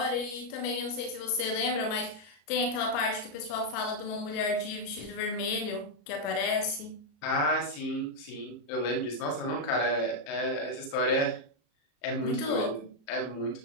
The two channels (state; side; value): late; right; 34 ms